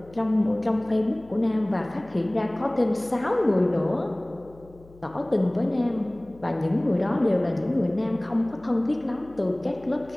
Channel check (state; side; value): noise; left; hum, 23 dB below the sound